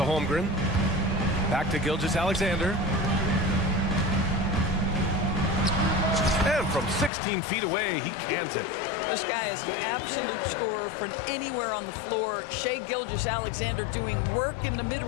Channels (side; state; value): right; drops out; at 7.1 s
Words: Holmgren. Back to Gilgeous-Alexander. And from 16 feet away, he cans it. This guy is an absolute scorer from anywhere on the floor. Shai Gilgeous-Alexander doing work in the